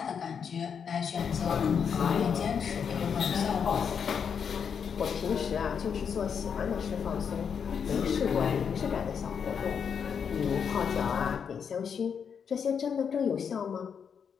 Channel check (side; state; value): right; quieter; 7.0 dB